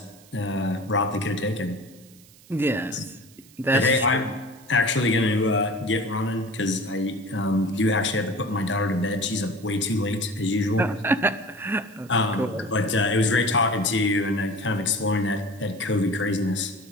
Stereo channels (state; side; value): noise; right; hiss, 25 dB below the sound